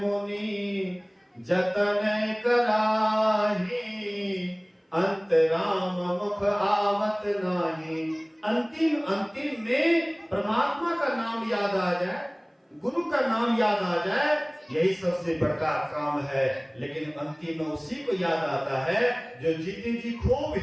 जतन कराही, अंतराम मुख आवत नाही। अंतिम अंतिम में परमात्मा का नाम याद आ जाए, गुरु का नाम याद आ जाए, यही सबसे बड़ा काम है। लेकिन अंतिम में उसी को याद आता है जो जीते जी खूब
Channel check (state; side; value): identical; both; correlation 1.00